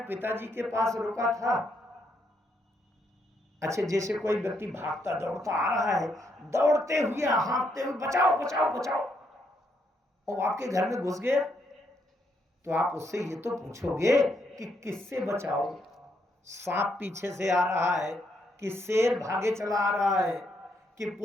पिताजी के पास रुका था। अच्छा जैसे कोई व्यक्ति भागता दौड़ता आ रहा है, दौड़ते हुए हाँफते हुए बचाओ बचाओ बचाओ, और आपके घर में घुस गया, तो आप उससे ये तो पूछोगे कि किससे बचाओ? सांप पीछे से आ रहा है, कि शेर भागे चला आ रहा है, कि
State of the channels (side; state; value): both; normal; correlation 0.76